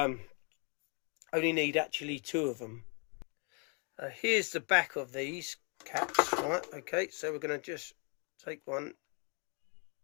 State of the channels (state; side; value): quieter; right; 37.5 dB